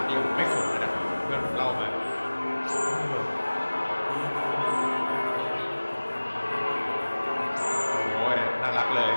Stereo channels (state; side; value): inverted; both; correlation -1.00